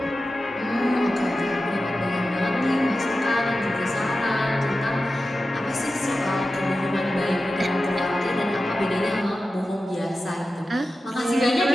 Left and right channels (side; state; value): both; normal; correlation 0.93